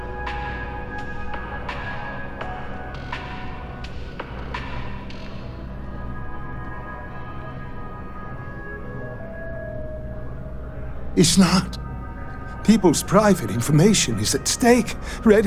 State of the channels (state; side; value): identical; both; correlation 1.00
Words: It's not. People's private information is at stake,